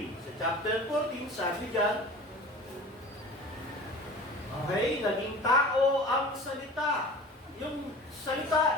Sa chapter 14, sabi dyan, okay, naging tao ang salita. Yung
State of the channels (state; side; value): normal; both; correlation 0.39